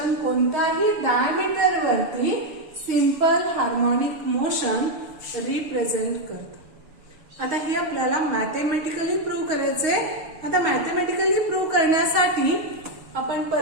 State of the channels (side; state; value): left; late; 6.9 ms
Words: कोणत्याही डायमीटर वरती सिंपल हार्मोनिक मोशन रिप्रेझेंट करतं. आता हे आपल्याला मॅथमॅटिकली प्रूव्ह करायचंय. आता मॅथमॅटिकली प्रूव्ह करण्यासाठी आपण